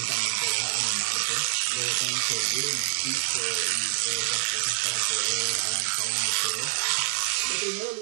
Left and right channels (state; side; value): silent; left; 60 dB below the other